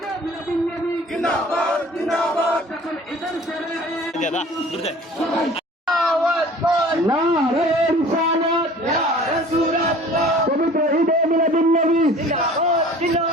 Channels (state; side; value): normal; both; correlation 0.46